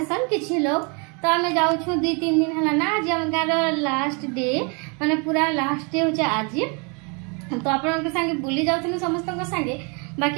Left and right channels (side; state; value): left; quieter; 33.8 dB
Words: किछि लोग तो आम जाऊँ 2-3 दिन है ना आज आम गाँव लास्ट डे माने पूरा लास्ट डे हो आज। तो आपण संगे बुली जाऊँ समस्त संगे